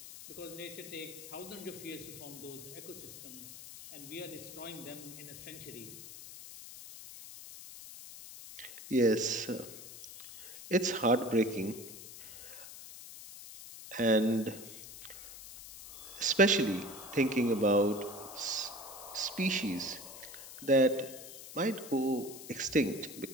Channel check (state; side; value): noise; left; hiss, 14 dB below the sound